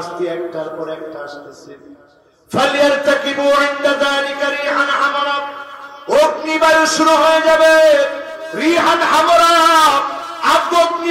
একটার পর একটা আসতেছে। ফালিয়ারতাকিবু ইনদা যালিকা রিহান হামারা, অগ্নিবায়ু শুরু হয়ে যাবে, রিহান হামারা,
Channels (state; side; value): identical; both; correlation 1.00